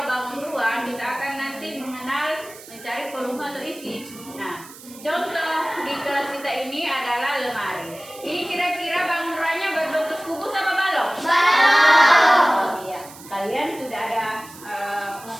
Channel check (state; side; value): noise; right; hiss, 18 dB below the sound